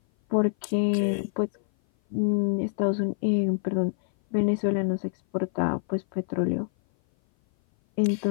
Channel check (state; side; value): silent; right; 57 dB below the other